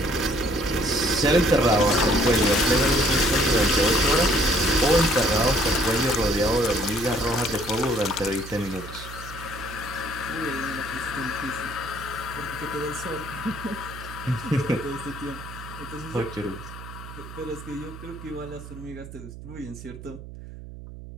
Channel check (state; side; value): noise; right; hum, 14 dB below the sound